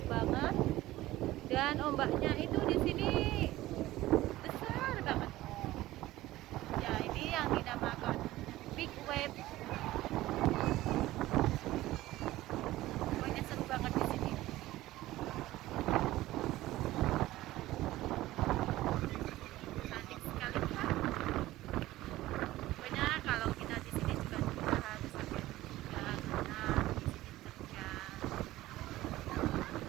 banget. Dan ombaknya itu di sini besar banget. Ya, ini yang dinamakan big wave. Pokoknya seru banget di sini. Cantik sekali kan? Pokoknya kalau kita di sini juga harus hati-hati juga karena di sini terjang.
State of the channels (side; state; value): left; quieter; 16.5 dB